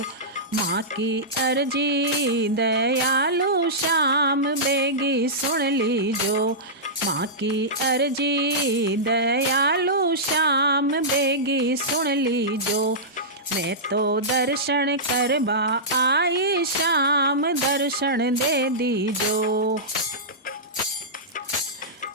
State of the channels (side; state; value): both; normal; correlation -0.14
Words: माँ की अर्जी दयालु श्याम बेगी सुन लीजो। माँ की अर्जी दयालु श्याम बेगी सुन लीजो। मैं तो दर्शन करवा आई श्याम दर्शन दे दीजो।